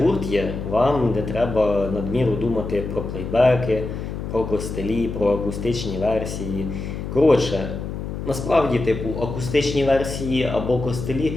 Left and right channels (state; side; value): noise; left; hum, 6 dB below the sound